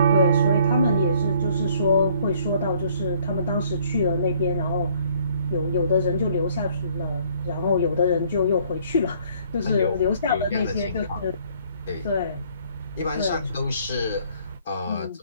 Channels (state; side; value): inverted; both; correlation -0.61